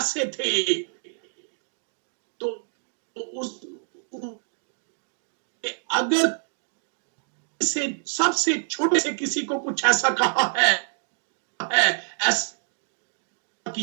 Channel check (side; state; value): left; silent; digital silence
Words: थे? तो कि अगर से सबसे छोटे से किसी को कुछ ऐसा कहा है ऐसा